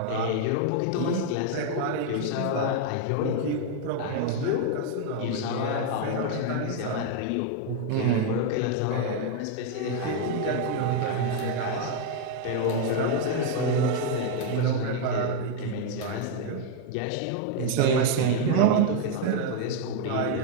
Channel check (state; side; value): different; both; correlation 0.00